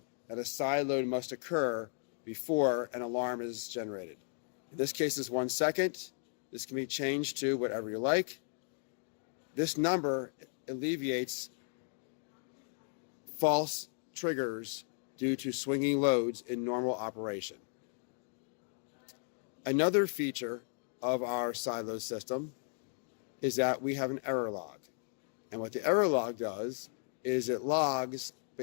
that a side load must occur before an alarm is generated. In this case, it's 1 second. This can be changed to whatever you like. This number alleviates false triggers due to swinging loads in normal operation. Another feature of our side load system is that we have an error log. And what the error log does is it logs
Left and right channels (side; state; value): right; silent; 54 dB below the other